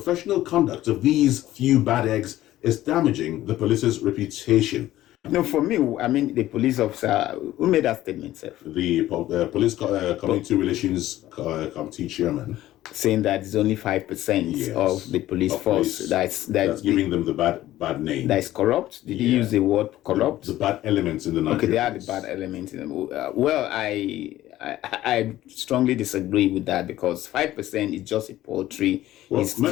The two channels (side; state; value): right; quieter; 14.6 dB